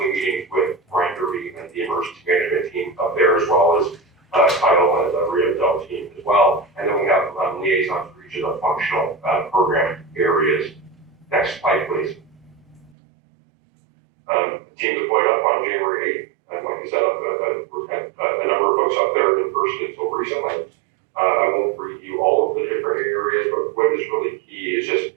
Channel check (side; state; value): left; drops out; at 12.9 s